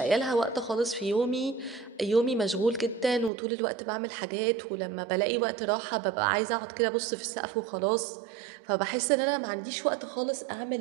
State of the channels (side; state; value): left; drops out; at 3.3 s